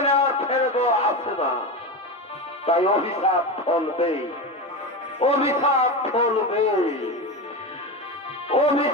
আর ফেরত আসে না। তাই অভিশাপ ফলবে, অভিশাপ ফলবে,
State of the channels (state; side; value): normal; both; correlation 0.20